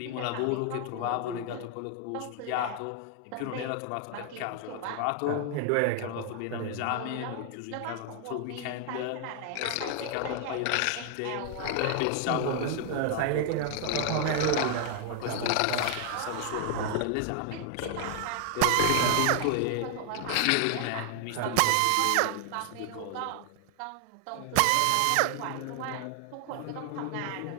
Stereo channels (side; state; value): both; different; correlation 0.00